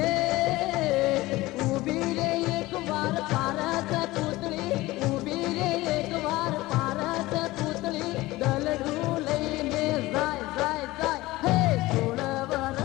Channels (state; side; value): quieter; right; 19.0 dB